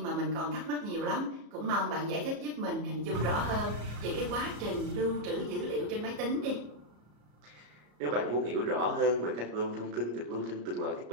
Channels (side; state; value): left; late; 34 ms